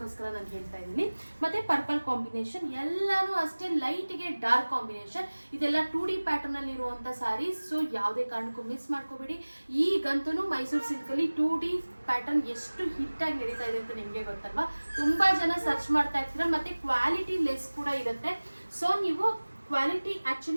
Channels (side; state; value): both; inverted; correlation -1.00